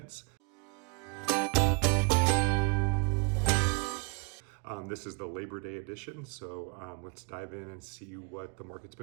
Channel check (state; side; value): quieter; left; 34.1 dB